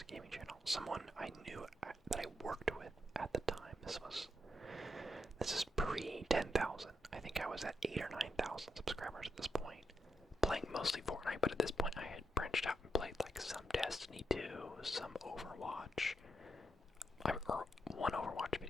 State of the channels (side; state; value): both; normal; correlation 0.82